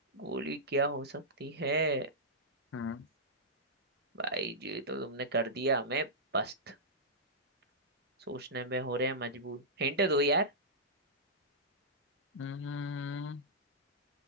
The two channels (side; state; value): both; normal; correlation -0.13